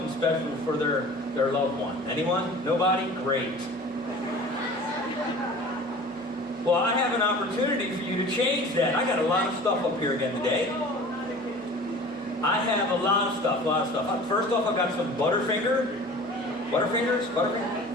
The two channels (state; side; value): normal; both; correlation 0.42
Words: special for their loved one. Anyone? Nobody? Great. Well, I have an opportunity for you to change that. I got a lot of stuff up here again today. I have a lot of stuff. First off, I've got some Butterfingers.